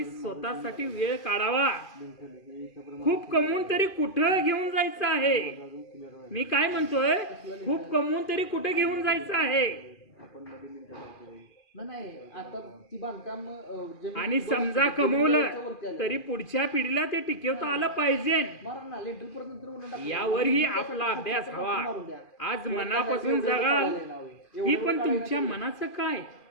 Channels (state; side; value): late; right; 2.4 ms